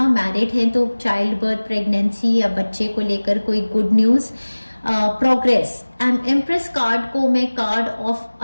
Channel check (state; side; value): inverted; both; correlation -1.00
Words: मैरिड हैं तो चाइल्ड बर्थ, प्रेगनेंसी या बच्चे को लेकर कोई good news, progress. And empress card को मैं card of